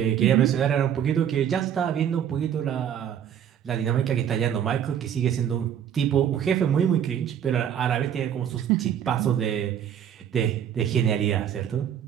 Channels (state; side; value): quieter; left; 9.4 dB